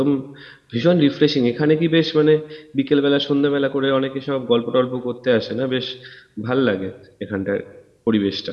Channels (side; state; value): both; identical; correlation 1.00